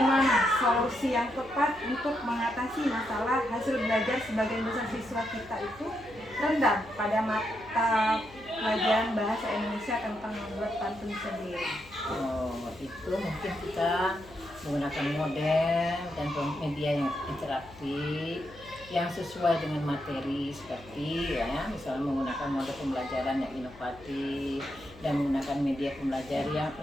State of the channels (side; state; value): left; noise; hum, 21 dB below the sound